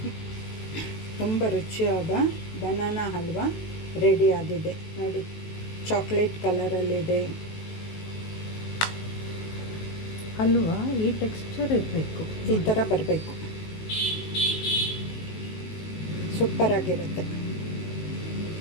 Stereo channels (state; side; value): late; right; 19 ms